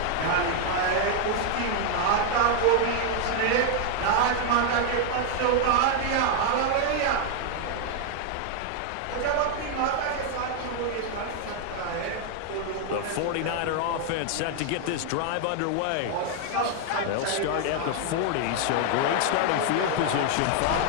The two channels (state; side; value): different; both; correlation 0.00